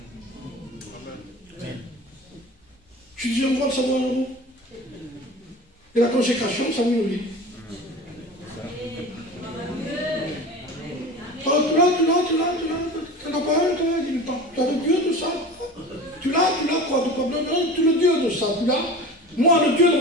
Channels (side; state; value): both; normal; correlation 0.36